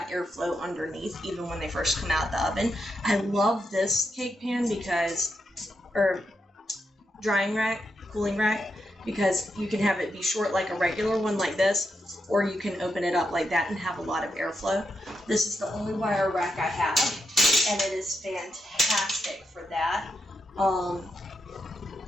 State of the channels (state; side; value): normal; both; correlation 0.84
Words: airflow underneath even when they first come out the oven. I love this cake pan because, or drying rack, cooling rack, because you can have it be short like a regular one like this, or you can open it up like that and have a lot of airflow. This is the only wire rack I have, and it is fantastic for that.